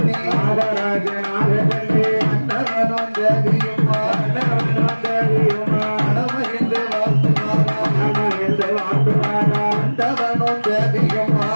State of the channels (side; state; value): both; inverted; correlation -1.00